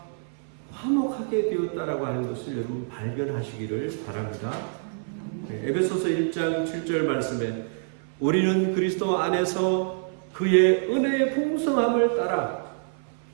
화목하게 되었다라고 하는 것을 여러분 발견하시기를 바랍니다. 에베소서 1장 7절 말씀에 우리는 그리스도 안에서 그의 은혜의 풍성함을 따라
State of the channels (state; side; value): silent; left; 56 dB below the other